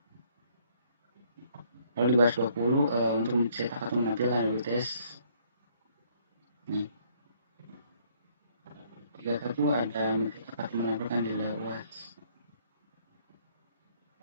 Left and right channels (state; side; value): inverted; both; correlation -0.64